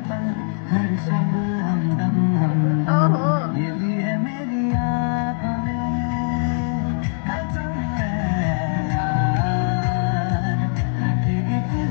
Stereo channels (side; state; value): right; silent; 59 dB below the other